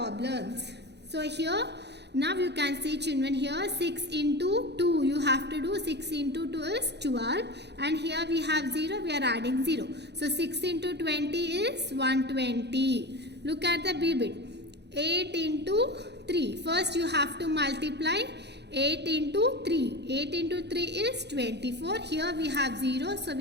So here now you can see children here 6 into 2. You have to do 6 into 2 is 12. And here we have 0. We are adding 0. So 6 into 20 is 120. Look at the B bit. 8 into 3. First you have to multiply 8 into 3. 8 into 3 is 24. Here we have 0. So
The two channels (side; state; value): left; late; 0.49 ms